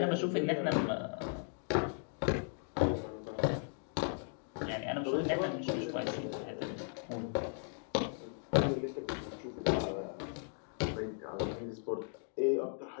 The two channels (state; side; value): silent; right; 53 dB below the other